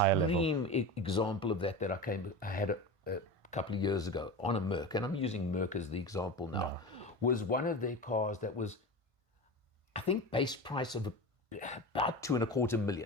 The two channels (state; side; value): late; left; 1.5 ms